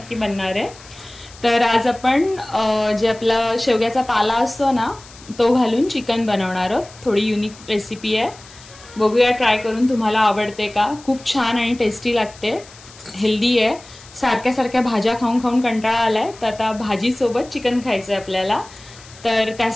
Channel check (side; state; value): left; noise; hiss, 21 dB below the sound